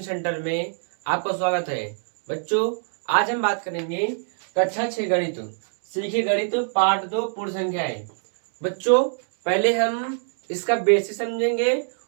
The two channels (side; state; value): left; silent; digital silence